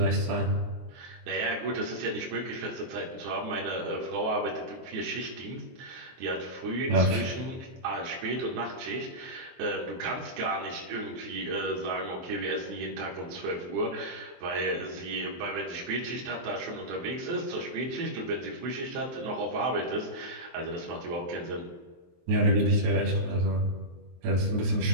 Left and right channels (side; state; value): left; late; 23 ms